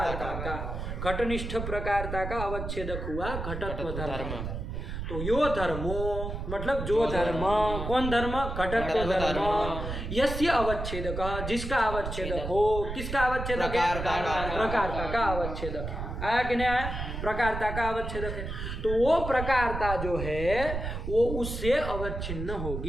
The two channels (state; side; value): noise; right; rumble, 5 dB below the sound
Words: का। घटनिष्ठ प्रकारता का अवच्छेदक हुआ घटत्व धर्म। तो यो धर्मो मतलब जो धर्म। कौन धर्म? घटत्व धर्म। यस्य अवच्छेदक जिसका अवच्छेदक हो। किसका अवच्छेदक है? प्रकारता का अवच्छेदक। आया कि नहीं आया? प्रकारता का अवच्छेदक है। तो वो प्रकारता जो है वो उससे अवच्छिन्न